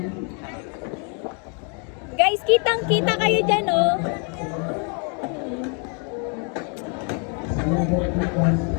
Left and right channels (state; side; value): quieter; right; 38.6 dB